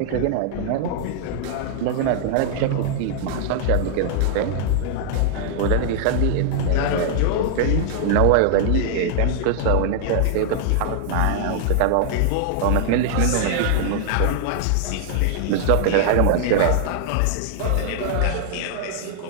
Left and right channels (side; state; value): both; different; correlation -0.01